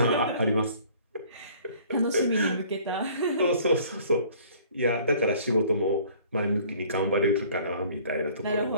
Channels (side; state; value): both; inverted; correlation -0.54